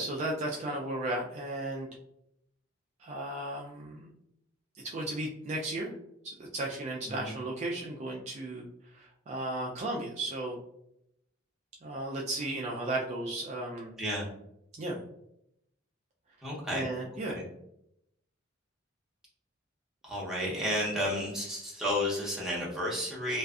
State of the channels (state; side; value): normal; both; correlation 0.31